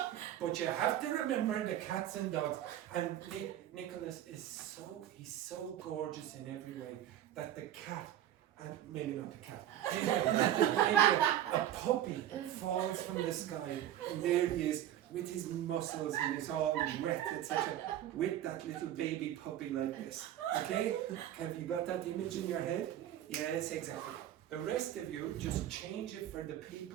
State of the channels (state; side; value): quieter; left; 11.9 dB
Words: But you have to remember the cats and dogs. And Nicholas is he's so gorgeous in every way that the cat, and maybe not the cat, maybe a puppy falls from the sky, and there he is with his muscles and he's all wet, etc. With that little baby puppy like this. Okay? Have you got that image in your head? Yes, exactly. The rest of you just change it for the